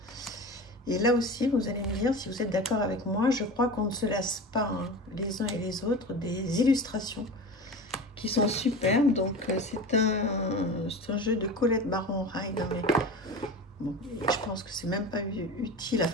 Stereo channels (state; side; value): normal; both; correlation 0.31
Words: Et là aussi, vous allez me dire si vous êtes d'accord avec moi. Je crois qu'on ne se lasse pas hein, les uns et les autres des illustrations qui sont superbes. Donc, c'est un jeu de Colette Baron-Ride. Hein, mais bon, je pense que c'est même pas utile,